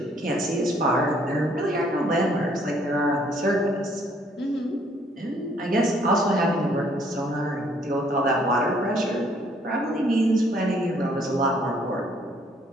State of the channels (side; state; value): both; normal; correlation 0.64